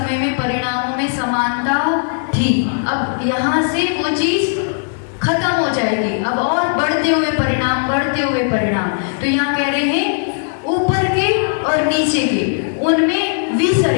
में परिणामों में समानता थी। अब यहाँ से वो चीज खत्म हो जाएगी, अब और बढ़ते हुए परिणाम, बढ़ते हुए परिणाम। तो यहाँ कह रहे हैं ऊपर के और नीचे के उनमें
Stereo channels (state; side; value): silent; right; digital silence